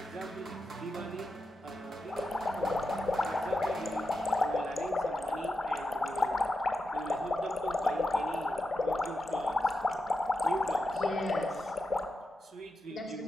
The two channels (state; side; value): normal; both; correlation 0.88